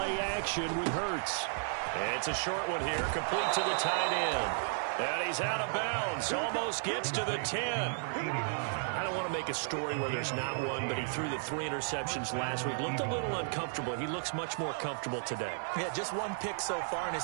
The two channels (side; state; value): left; silent; digital silence